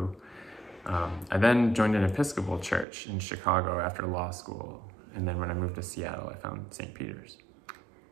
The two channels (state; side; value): drops out; left; at 2.9 s